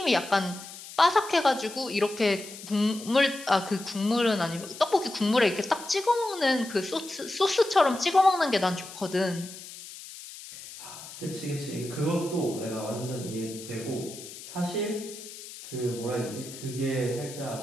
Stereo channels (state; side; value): noise; left; hiss, 14 dB below the sound